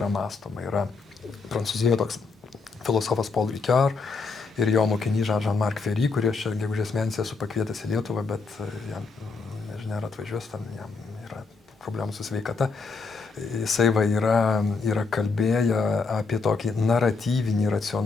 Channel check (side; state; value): right; quieter; 4.4 dB